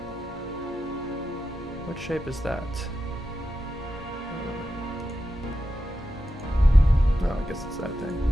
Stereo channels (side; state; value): both; normal; correlation 0.89